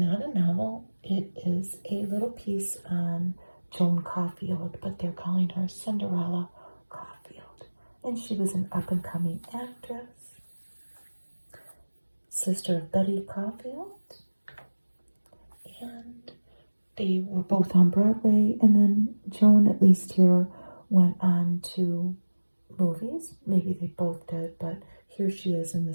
a novel. It is a little piece on Joan Caulfield, but they're calling her Cinderella Caulfield. And she was an up-and-coming actress, sister of Betty Caulfield. And they were both on Broadway. And then Joan, at least here, went on to movies. Maybe they both did, but here she is in the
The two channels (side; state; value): both; inverted; correlation -1.00